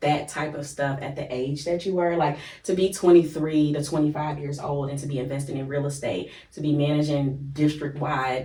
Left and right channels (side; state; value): both; identical; correlation 1.00